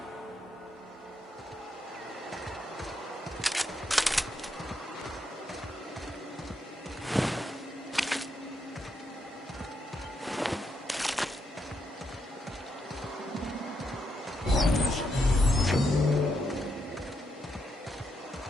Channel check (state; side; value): normal; both; correlation 0.80